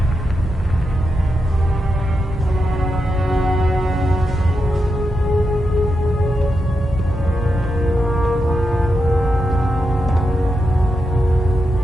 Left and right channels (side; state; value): both; normal; correlation 0.86